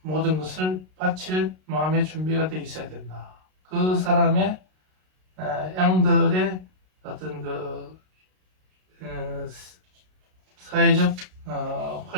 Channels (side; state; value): left; late; 32 ms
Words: 모든 것을 바칠 마음의 준비가 되어 있어야 된다. 그 사람의 양들의 어떤 그 사회적